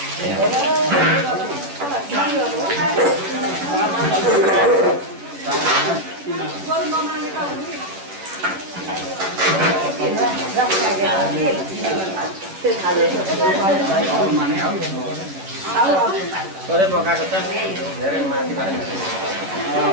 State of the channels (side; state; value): left; late; 10 ms